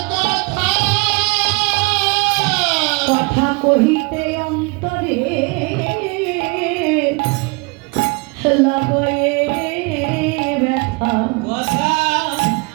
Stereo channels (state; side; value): quieter; left; 28.3 dB